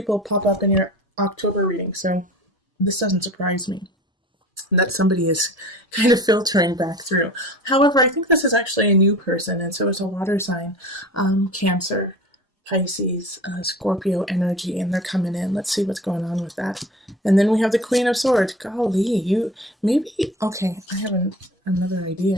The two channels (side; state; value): both; normal; correlation 0.38